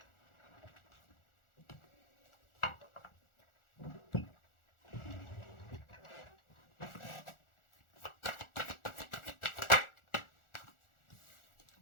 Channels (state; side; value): late; right; 1.4 ms